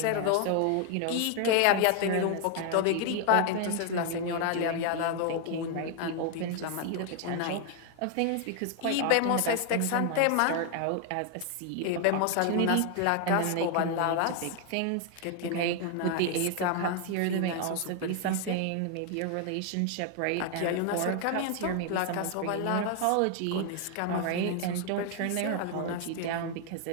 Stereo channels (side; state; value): both; different; correlation 0.00